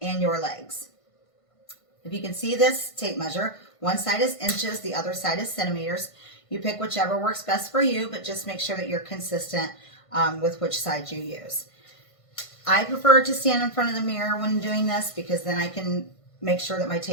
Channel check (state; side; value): late; right; 1.5 ms